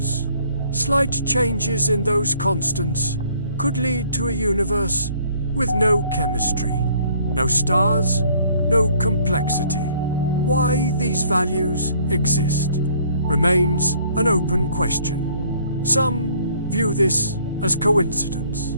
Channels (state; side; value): inverted; both; correlation -0.61